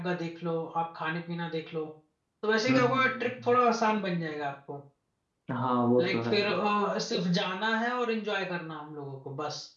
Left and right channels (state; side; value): identical; both; correlation 1.00